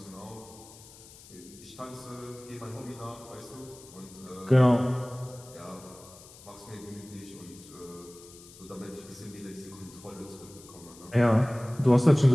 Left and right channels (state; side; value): noise; left; hiss, 20 dB below the sound